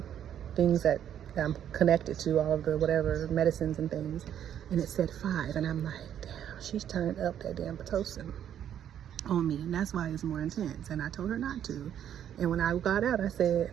things that I'm connected to, all of the whatever medicines and things, and it said 5. And I'm like, damn, she's turned up that damn Pitocin on me, and that's why it's more intense. And I told her not to. And when I got out, I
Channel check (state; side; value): quieter; left; 9.9 dB